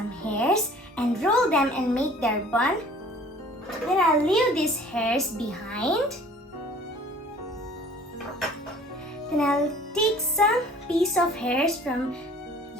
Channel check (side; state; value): both; normal; correlation 0.50